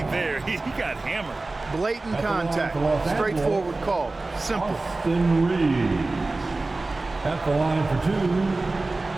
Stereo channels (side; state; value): left; quieter; 3.2 dB